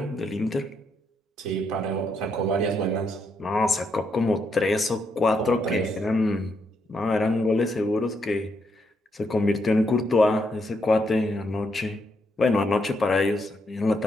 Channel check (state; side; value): normal; both; correlation 0.78